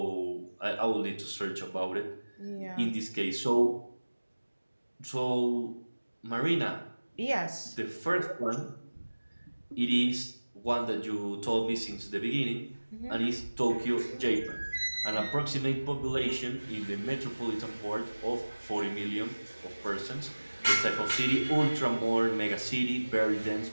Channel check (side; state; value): both; inverted; correlation -1.00